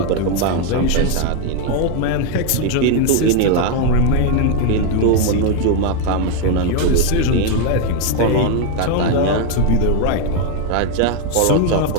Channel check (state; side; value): different; both; correlation 0.01